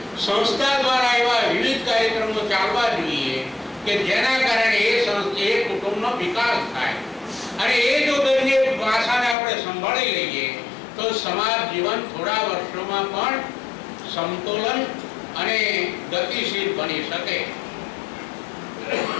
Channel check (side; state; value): right; drops out; at 9.3 s